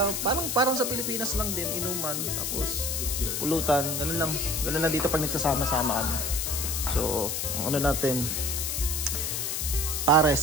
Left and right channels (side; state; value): left; noise; hiss, 1 dB below the sound